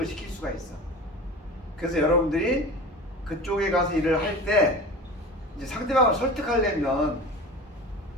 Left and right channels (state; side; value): normal; both; correlation 0.34